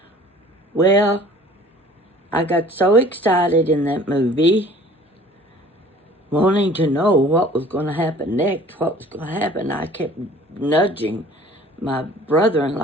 Well, I got so excited in that movie, wanting to know what was going to happen next, what was going to happen. I kept nudging my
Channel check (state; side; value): normal; both; correlation 0.50